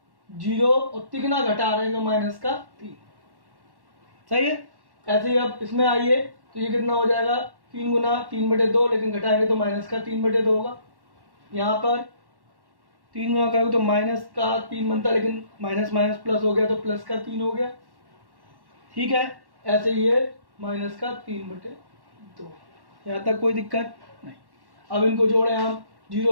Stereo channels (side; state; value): left; late; 1.1 ms